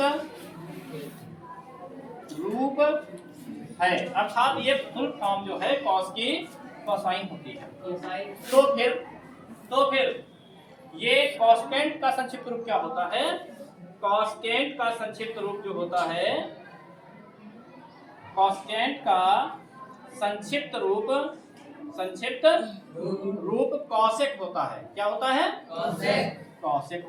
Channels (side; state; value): both; identical; correlation 1.00